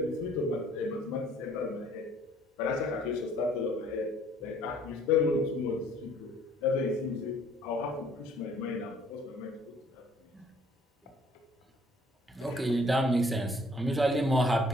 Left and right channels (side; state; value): both; normal; correlation 0.59